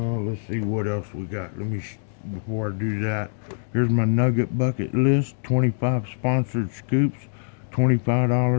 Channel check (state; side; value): silent; right; digital silence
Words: see what else we got. Before I do that, here's my Nugget Bucket list. 25 sponsored scoops,